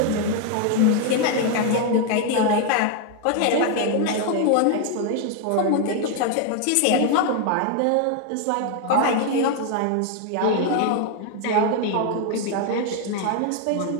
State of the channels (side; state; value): both; different; correlation 0.01